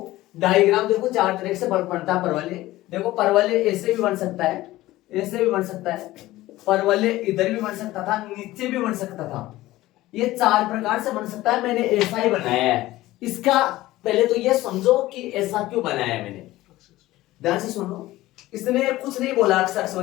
डायग्राम देखो 4 तरीके से बनता है परवलय। देखो परवलय ऐसे भी बन सकता है, ऐसे भी बन सकता है, परवलय इधर भी बन सकता था, नीचे भी बन सकता था, ये 4 प्रकार से बन सकता है। मैंने ऐसा ही बनाया है। इसका पहले तो ये समझो कि ऐसा क्यों बनाया है मैंने, ध्यान से सुनो। इसने कुछ नहीं बोला अक्ष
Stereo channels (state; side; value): quieter; right; 16.9 dB